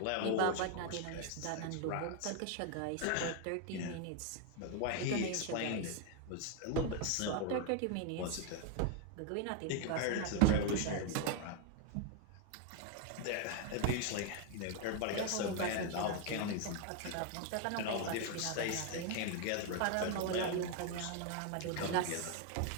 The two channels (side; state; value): both; different; correlation 0.01